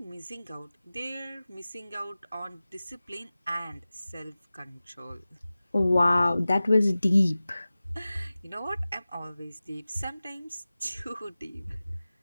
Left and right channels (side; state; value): both; inverted; correlation -0.97